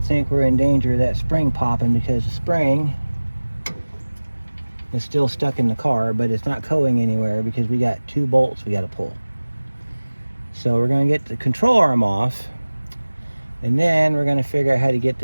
think we're in danger of that spring popping because the spring is still stuck in the car, but it's not going anywhere because we got 2 bolts we got to pull. So we're going to get the control arm off, and then we're going to figure out how to get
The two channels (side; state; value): both; inverted; correlation -1.00